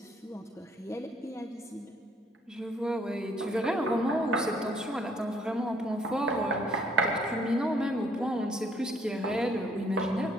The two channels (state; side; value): normal; both; correlation 0.64